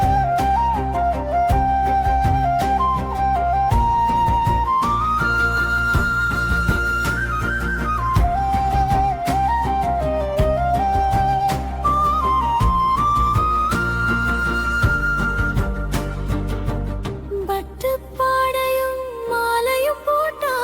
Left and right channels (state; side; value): identical; both; correlation 1.00